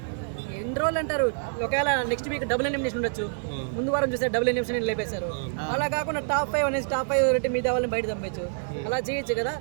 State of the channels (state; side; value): silent; left; digital silence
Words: ఎన్ని రోజులు అంటారు, ఒకవేళ నెక్స్ట్ వీక్ డబుల్ ఎలిమినేషన్ ఉండొచ్చు. ముందు వారం చూస్తే డబుల్ ఎలిమినేషన్ లేపేశారు. అలా కాకుండా టాప్ 5 అనేసి టాప్ 5 రెట్టి మీద వాళ్ళని బయట పంపించు, అలా చేయొచ్చు కదా.